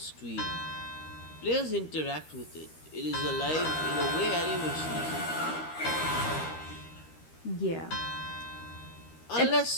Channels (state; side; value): late; right; 13 ms